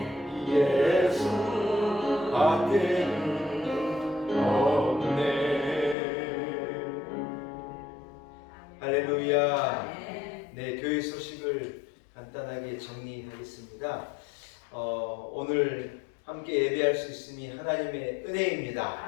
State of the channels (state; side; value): drops out; right; at 6.0 s